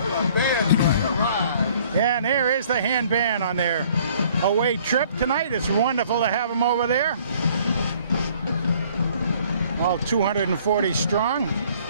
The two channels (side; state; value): both; inverted; correlation -0.58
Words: Yeah, and there is the Hand band on their away trip tonight. It's wonderful to have them over there. All 240 strong.